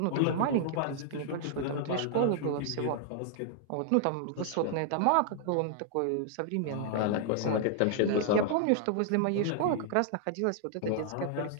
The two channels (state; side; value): different; both; correlation 0.00